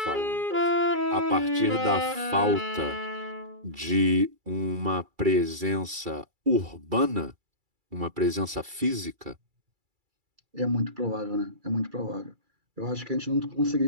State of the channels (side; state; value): left; late; 2.3 ms